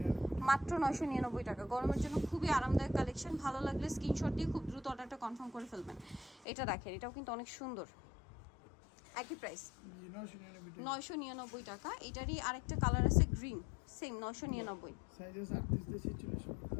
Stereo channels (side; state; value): right; drops out; at 6.5 s